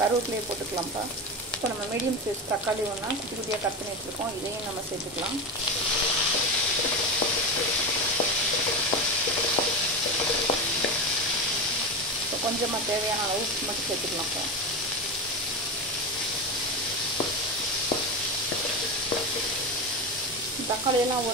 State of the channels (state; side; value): normal; both; correlation 0.19